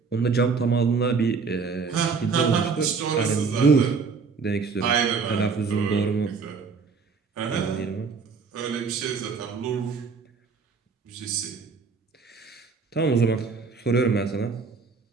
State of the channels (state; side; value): quieter; left; 5.0 dB